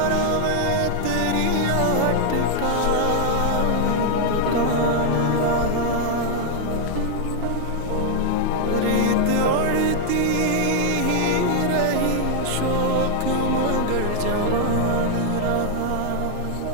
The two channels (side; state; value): both; different; correlation 0.00